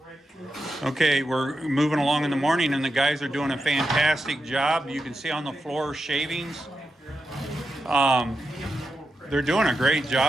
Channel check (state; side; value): normal; both; correlation 0.88